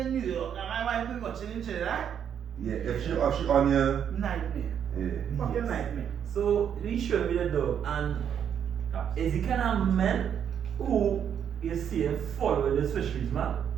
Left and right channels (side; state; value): left; quieter; 8.6 dB